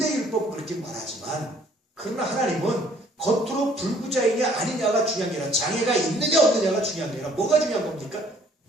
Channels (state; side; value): normal; both; correlation 0.59